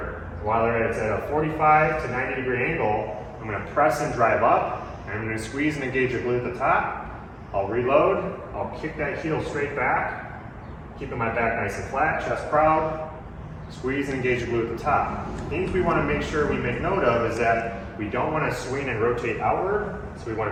while it's at a 45 to 90 degree angle, I'm going to press and drive up, and I'm going to squeeze and engage the glute at the top. I'll reload, I'll kick that heel straight back, keeping my back nice and flat, chest proud, squeeze and engage the glute at the top. Things we want to make sure we make note of is that we don't want to swing and rotate outward, so we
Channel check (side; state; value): both; identical; correlation 1.00